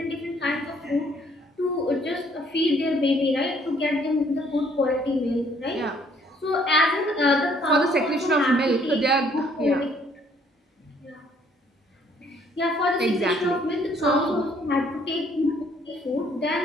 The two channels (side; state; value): both; normal; correlation 0.63